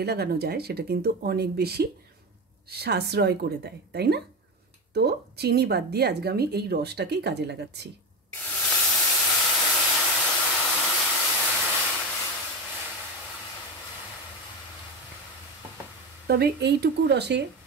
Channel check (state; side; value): normal; both; correlation 0.19